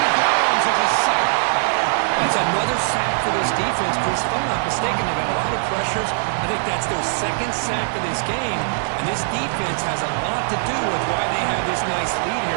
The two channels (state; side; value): silent; left; digital silence